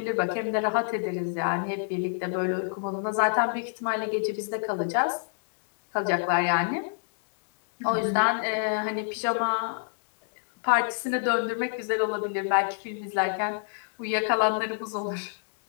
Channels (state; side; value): silent; right; digital silence